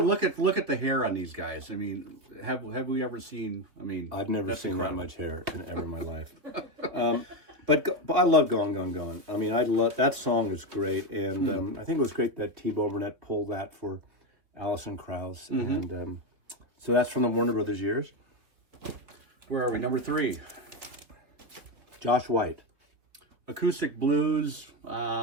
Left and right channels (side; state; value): left; late; 3.1 ms